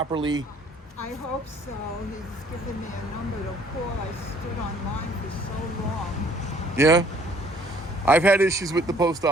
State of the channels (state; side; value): normal; both; correlation 0.59